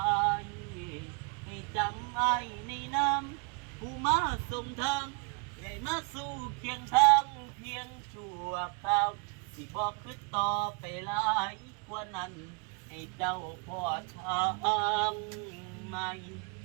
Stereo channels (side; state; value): left; quieter; 33.2 dB